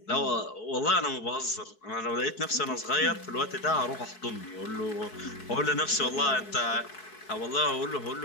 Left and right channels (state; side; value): late; right; 4.6 ms